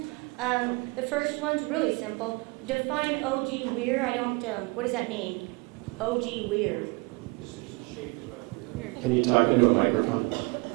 The first one's really simple. Define O.G. Weir. What does that mean? O.G. Weir. Can you talk into a microphone?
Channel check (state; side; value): quieter; left; 27.7 dB